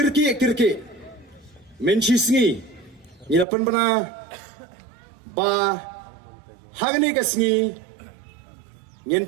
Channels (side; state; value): left; drops out; at 3.5 s